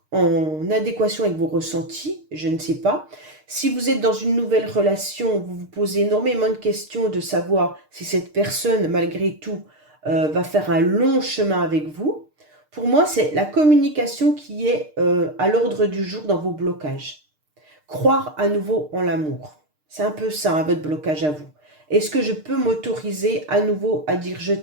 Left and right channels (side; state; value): left; late; 6.6 ms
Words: en adéquation avec vos ressentis? Je ne sais pas. Si vous êtes dans une nouvelle relation, vous vous posez énormément de questions de savoir si cette personne, malgré tout, va faire un long chemin avec vous. Pour moi, c'est la communication qui est à l'ordre du jour dans vos blocages. Croire à nouveau en l'amour. C'est un peu ça, hein, votre blocage à vous. Est-ce que je peux m'autoriser à nouveau à dire je